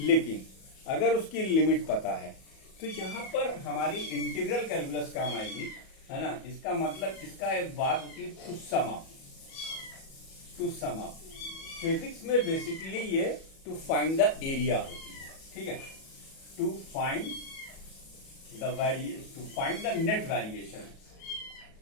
अगर उसकी लिमिट पता है, तो यहां पर हमारी इंटीग्रल कैलकुलस काम आएगी, है ना। इसका मतलब इसका एक बात होती है टू सम अप। फिजिक्स में बेसिकली ये टू फाइंड द एरिया होती है, ठीक है। To find the net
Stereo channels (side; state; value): right; late; 37 ms